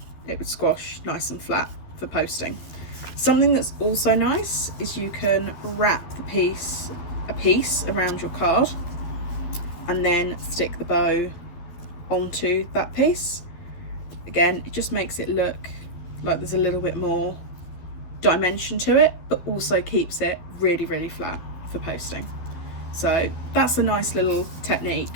it would squash nice and flat for posting. Something that's also nice is you can wrap a piece around your card and then stick the bow onto that piece. Again, it just makes it look like there's a little bit more dimension to it, but also keeps it really, really flat for posting. So that's a nice little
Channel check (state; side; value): late; right; 12 ms